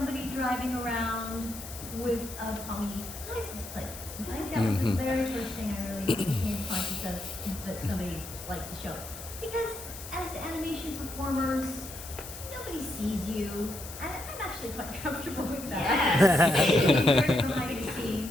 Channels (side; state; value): left; noise; hiss, 12 dB below the sound